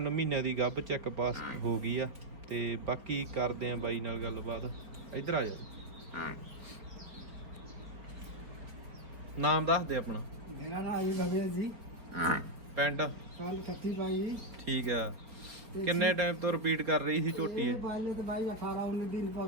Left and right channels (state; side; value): late; left; 4.6 ms